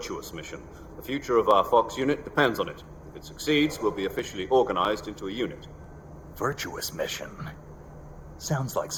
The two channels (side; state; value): both; identical; correlation 1.00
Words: mission. The future of our Fox unit depends on it. If it succeeds, we'll be officially organized into a unit. Virtuous mission? Sounds like